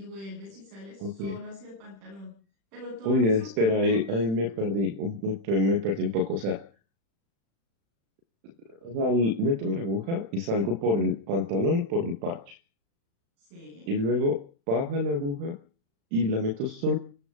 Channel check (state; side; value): late; left; 36 ms